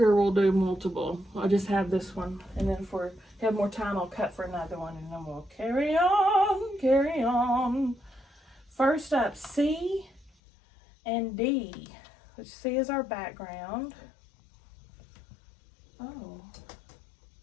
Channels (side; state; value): right; drops out; at 10.3 s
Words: we'll do multiple. I'll just have this one. And then if we have more time, I'll cut for another one. And then we'll carry on, carry on. First up, C and D. Which C is our background. Oh.